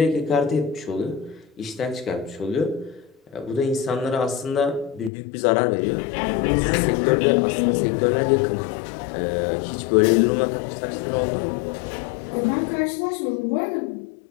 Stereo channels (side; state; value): right; drops out; at 5.1 s